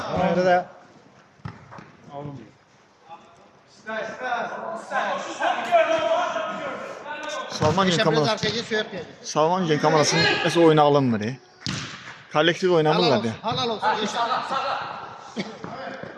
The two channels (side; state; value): both; identical; correlation 1.00